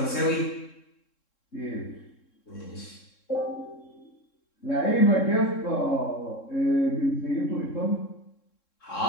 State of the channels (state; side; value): late; right; 3.7 ms